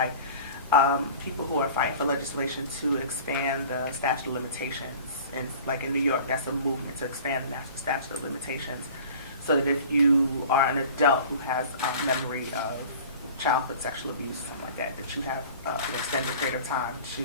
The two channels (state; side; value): inverted; both; correlation -0.43